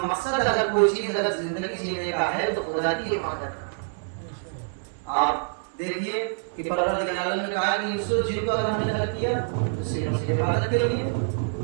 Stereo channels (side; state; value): left; silent; 61 dB below the other